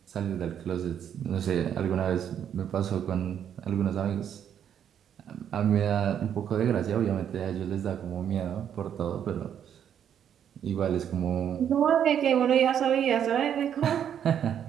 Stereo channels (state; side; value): quieter; left; 9.1 dB